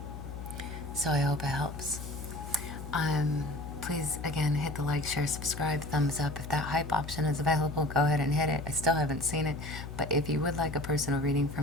So I hope it helps. Please, again, hit the like, share, subscribe, thumbs up. If that hype option is available, go ahead and hit it. I still haven't seen it, but if you would like a personal reading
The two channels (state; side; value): noise; left; hum, 9 dB below the sound